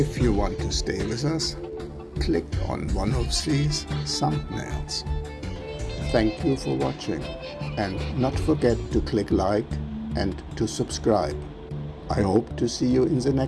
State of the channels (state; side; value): identical; both; correlation 1.00